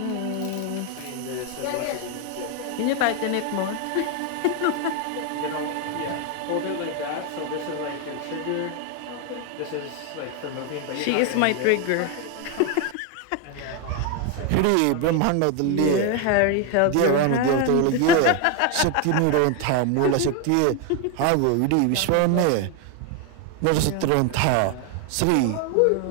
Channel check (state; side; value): different; both; correlation 0.01